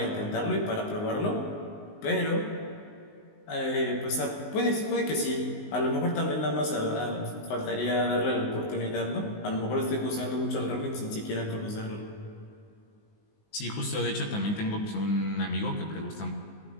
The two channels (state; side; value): late; right; 19 ms